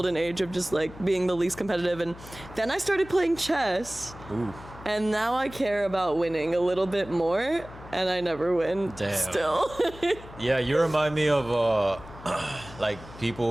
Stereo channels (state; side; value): noise; left; hum, 17 dB below the sound